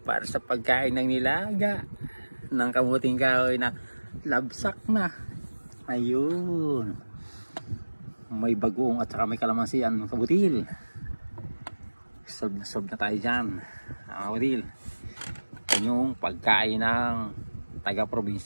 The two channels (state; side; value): inverted; both; correlation -1.00